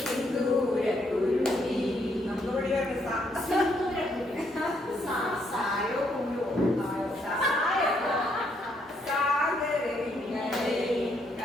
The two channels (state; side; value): normal; both; correlation 0.73